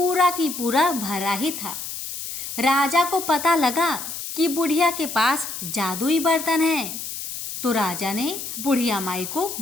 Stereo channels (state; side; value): noise; left; hiss, 7 dB below the sound